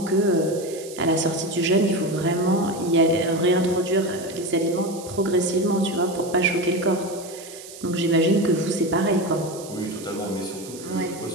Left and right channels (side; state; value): right; noise; hiss, 16 dB below the sound